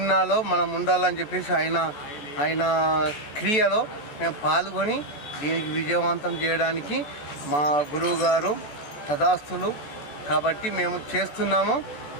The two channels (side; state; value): right; late; 14 ms